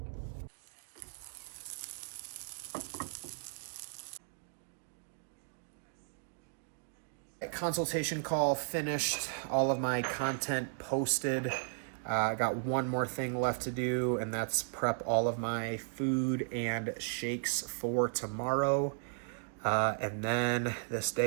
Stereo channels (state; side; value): silent; left; digital silence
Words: Consultation call finished, all of my content posted. I got one more thing left to do, and that's prep all of my food and shakes for tomorrow. And then this